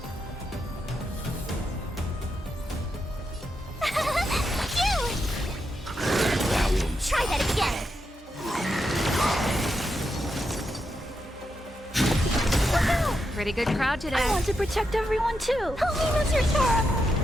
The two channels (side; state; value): both; normal; correlation 0.84